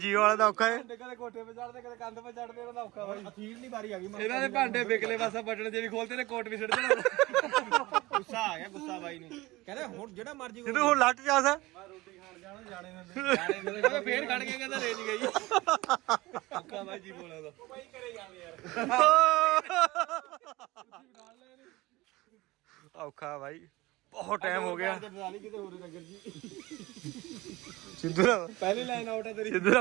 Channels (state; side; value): quieter; left; 20.1 dB